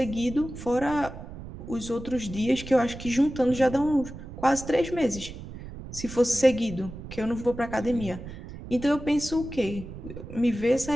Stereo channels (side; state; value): right; noise; rumble, 12 dB below the sound